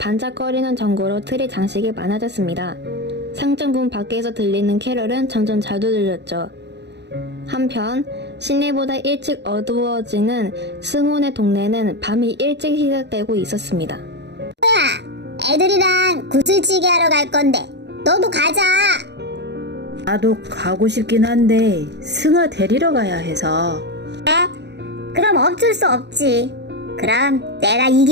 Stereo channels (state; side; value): late; left; 0.50 ms